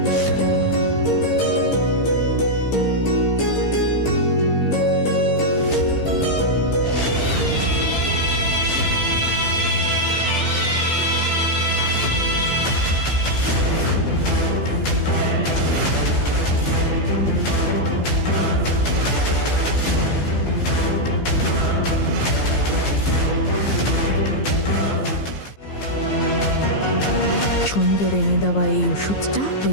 ছন্দর এনে দেওয়া এই ওষুধটা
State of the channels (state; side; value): late; right; 15 ms